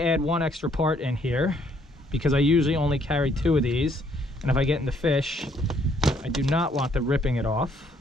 add one extra part in here because I usually only carry 2 of these, and if I get in the fish, I do not want them ripping it off.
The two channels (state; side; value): normal; both; correlation 0.67